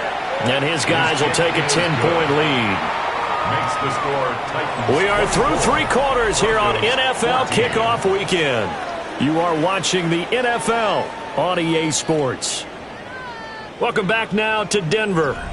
And his guys will take a 10-point lead. Makes the score Titans. We are through 3 quarters here on NFL Kickoff Weekend. You are watching the NFL on EA Sports. Welcome back now to Denver,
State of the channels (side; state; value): both; identical; correlation 1.00